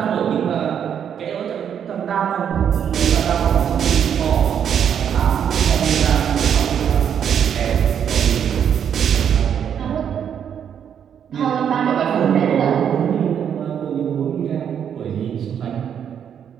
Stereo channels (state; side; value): quieter; left; 8.5 dB